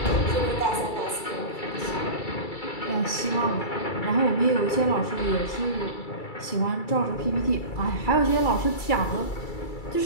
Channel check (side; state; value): right; late; 2.3 ms